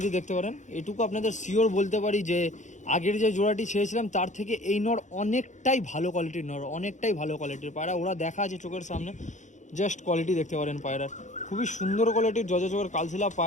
দেখতে পারেন, এটুকু আপনাদের শিওর বলতে পারি যে আগের যে জোড়াটি ছেড়েছিলাম তার থেকে এই নর অনেকটাই ভালো কোয়ালিটির নর, অনেকটাই ভালো কোয়ালিটির পায়রা। ওরা দেখা আছে চোখের সামনে, জাস্ট কোয়ালিটি দেখতে পারেন পায়রার, খুবই সুন্দর কোয়ালিটির জর্জা চোখের কালশিলা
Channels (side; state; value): right; late; 0.35 ms